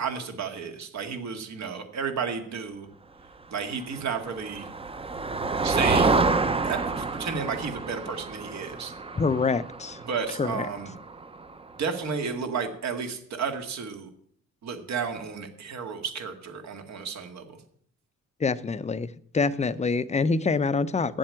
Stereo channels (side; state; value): both; normal; correlation 0.31